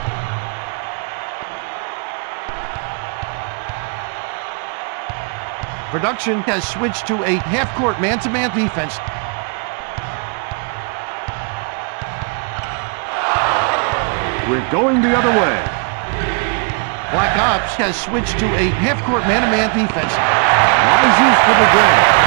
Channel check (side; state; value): left; quieter; 37.5 dB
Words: Production has switched to a half-court man-to-man defense. We're going the other way. Black Ops has switched to a half-court man-to-man defense. Rises for the drag.